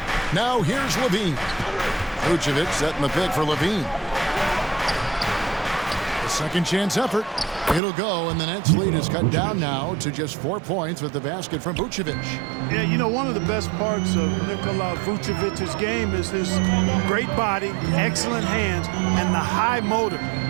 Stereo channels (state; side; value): drops out; left; at 7.8 s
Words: Now here's Levine. Vucevic setting the pick for Levine. A second chance effort. It'll go, and the Nets lead is cut down now to just 4 points with the basket from Vucevic. Yeah, you know, one of the best parts of Nikola Vucevic's game is his great body, excellent hands, and the high motor